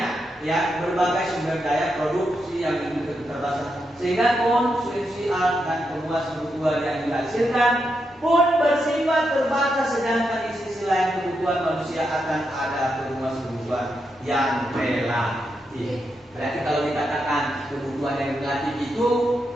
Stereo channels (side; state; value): both; normal; correlation 0.84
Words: ya, berbagai sumber daya produksi yang terbatas, sehingga konsumsi alat dan pemuas kebutuhan yang dihasilkan pun bersifat terbatas, sedangkan di sisi lain kebutuhan manusia akan ada pemuas kebutuhan yang relatif. Berarti kalau dikatakan kebutuhan yang relatif itu